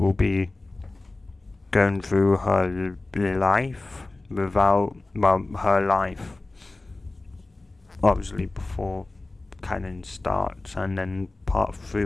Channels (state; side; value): quieter; right; 3.1 dB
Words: be going through her life her life obviously before canon starts, and then part 3